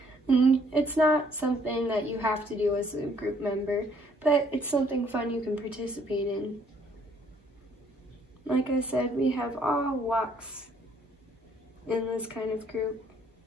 And it's not something that you have to do as a group member, but it's something fun you can participate in. Like I said, we have all walks in this kind of group.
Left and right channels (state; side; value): normal; both; correlation 0.64